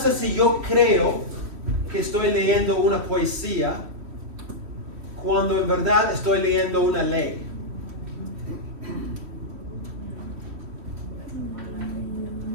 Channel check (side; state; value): left; late; 3.1 ms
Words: si yo creo que estoy leyendo una poesía cuando en verdad estoy leyendo una ley.